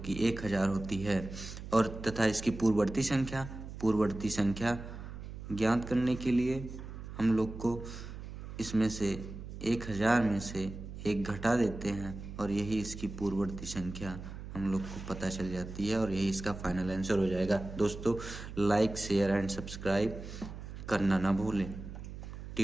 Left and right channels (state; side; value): noise; right; hum, 10 dB below the sound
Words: 1000 होती है। और तथा इसकी पूर्ववर्ती संख्या ज्ञात करने के लिए हम लोग को इसमें से 1000 में से एक घटा देते हैं और यही इसकी पूर्ववर्ती संख्या हम लोग को पता चल जाती है, और यही इसका फाइनल आंसर हो जाएगा। दोस्तों, लाइक शेयर एंड सब्सक्राइब करना ना भूलें